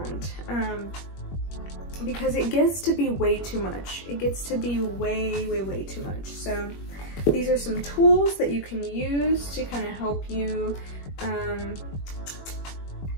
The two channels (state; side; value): late; right; 21 ms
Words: because it gets to be way too much. It gets to be way too much. So these are some tools that you can use to kind of help you